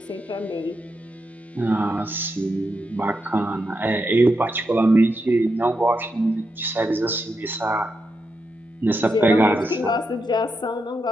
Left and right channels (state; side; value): normal; both; correlation 0.85